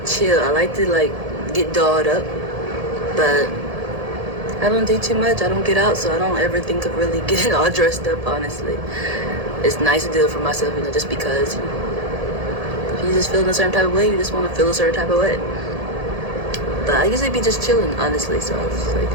I like to, like, get dolled up, but I don't do too much. I don't get out, so I don't ever think of really getting all dressed up, honestly. It's nice to do it for myself, just because if you just feel in a certain type of way, you just want to feel a certain type of way. But I usually be just chilling, honestly, so it's like,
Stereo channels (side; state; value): left; late; 1.7 ms